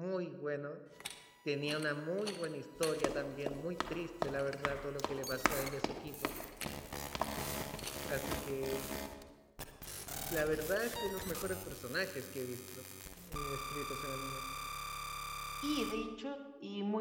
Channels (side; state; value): both; identical; correlation 1.00